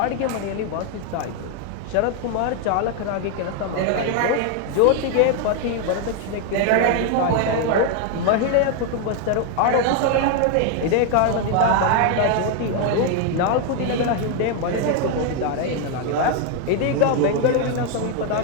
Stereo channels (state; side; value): different; both; correlation 0.01